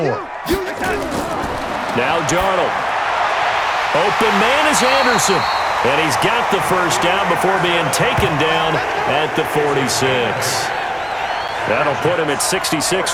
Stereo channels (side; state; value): both; identical; correlation 1.00